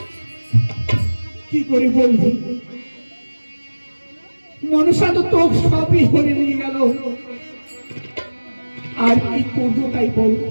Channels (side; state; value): both; inverted; correlation -1.00